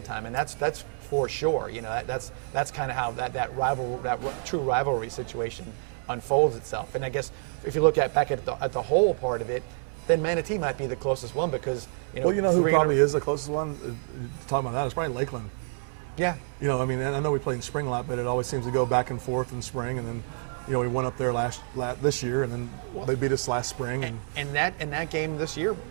time, and that's for sure. That's kind of how that true rivalry situation unfolds itself. And I guess if you look back at the whole part of it, then Manatee might be the closest one because who probably is the closest one. Talking about that, it's probably Lakeland. Yeah. I mean, I know we play in spring a lot, but it always seems to go back and forth in spring, and then. We went up there this year, and then they beat us last spring. And that game this year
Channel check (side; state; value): left; silent; 59 dB below the other